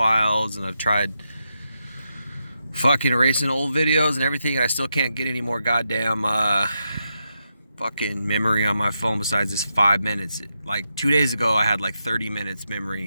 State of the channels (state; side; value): inverted; both; correlation -0.85